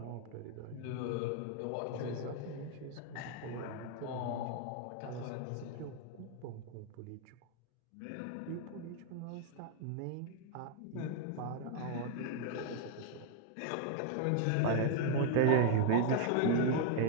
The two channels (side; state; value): both; different; correlation 0.00